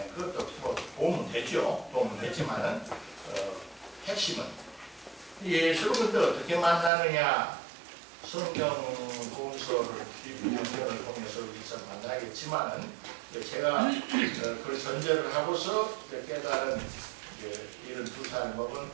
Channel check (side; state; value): left; drops out; at 6.9 s